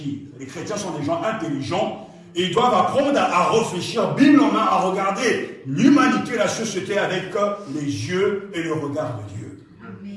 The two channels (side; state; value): both; identical; correlation 1.00